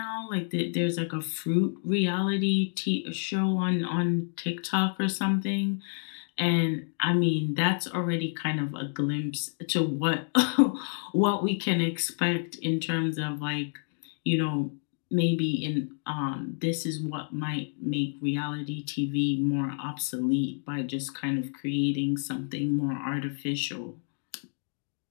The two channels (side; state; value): right; silent; 59 dB below the other